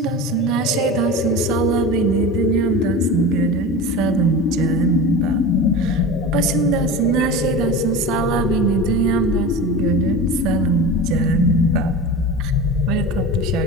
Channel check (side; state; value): both; normal; correlation 0.30